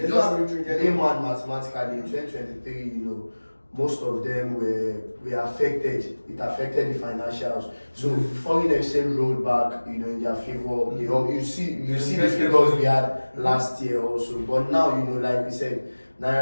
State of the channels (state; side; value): inverted; both; correlation -1.00